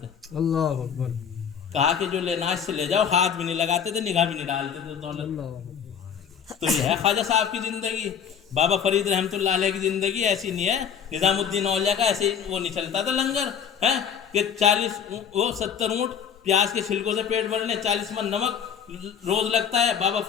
اللہ اکبر. کہا کہ جو لینا اس سے لے جاؤ، ہاتھ بھی نہیں لگاتے تھے، نگاہ بھی نہیں ڈالتے تھے دولت. تو یہ ہے خواجہ صاحب کی زندگی. بابا فرید رحمۃ اللہ علیہ کی زندگی ایسی نہیں ہے. نظام الدین اولیاء کا ایسے وہ نہیں چلتا تھا لنگر ہے کہ 70 اونٹ پیاز کے چھلکوں سے پیٹ بھرنے، 40 من نمک روز لگتا ہے. بابا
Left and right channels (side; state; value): right; quieter; 7.7 dB